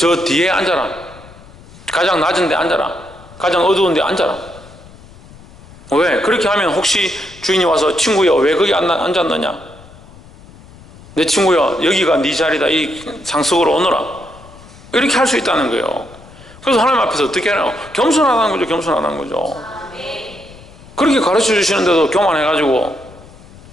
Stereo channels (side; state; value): left; noise; rumble, 21 dB below the sound